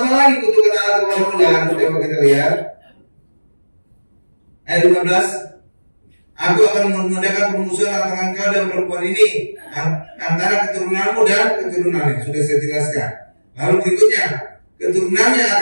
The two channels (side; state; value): both; inverted; correlation -1.00